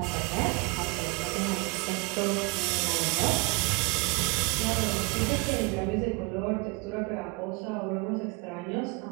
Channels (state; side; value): quieter; left; 26.5 dB